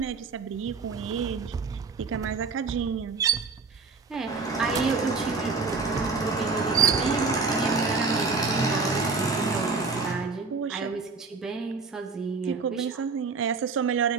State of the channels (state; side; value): quieter; left; 4.4 dB